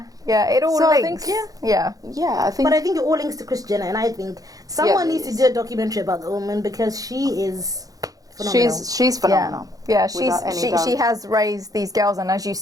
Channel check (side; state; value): left; late; 0.17 ms